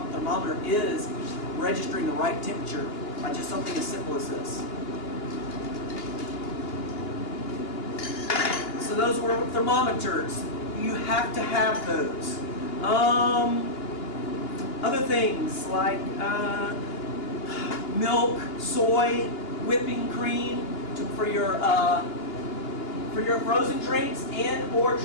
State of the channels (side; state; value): right; late; 2.8 ms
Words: is registering the right temperature by just something as simple as this. So those were thermometers. You have to have those. Other things like milk, soy, whipping cream for your frozen drinks and or